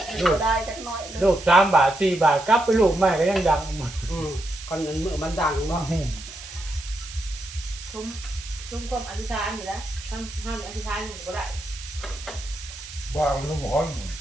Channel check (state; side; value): noise; right; hiss, 14 dB below the sound